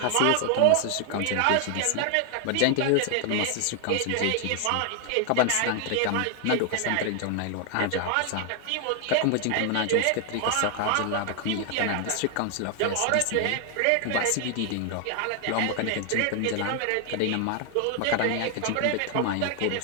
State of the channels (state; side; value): different; both; correlation 0.00